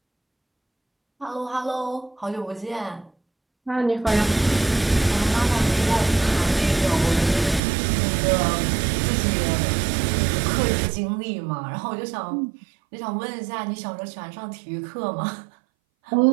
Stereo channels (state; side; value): drops out; left; at 7.6 s